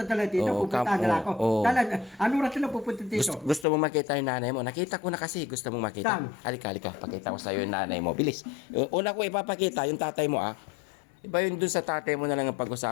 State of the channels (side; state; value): right; drops out; at 3.7 s